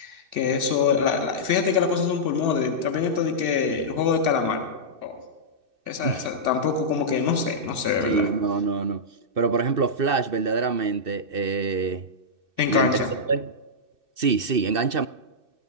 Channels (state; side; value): late; left; 2.6 ms